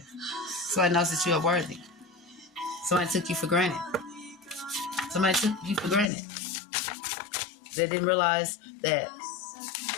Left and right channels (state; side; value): drops out; right; at 6.1 s